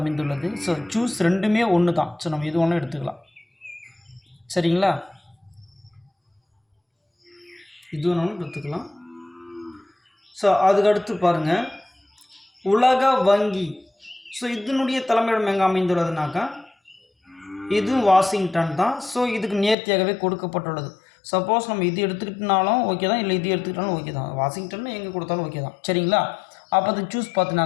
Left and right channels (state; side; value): drops out; right; at 19.8 s